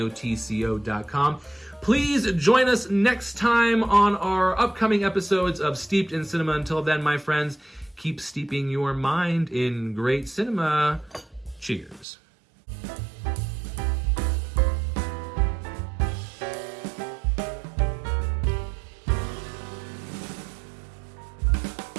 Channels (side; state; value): left; drops out; at 12.1 s